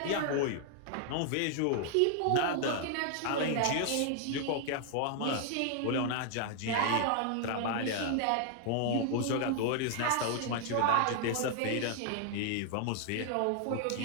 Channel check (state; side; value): different; both; correlation 0.00